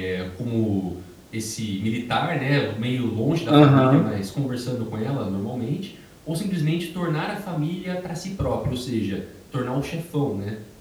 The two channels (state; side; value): identical; both; correlation 1.00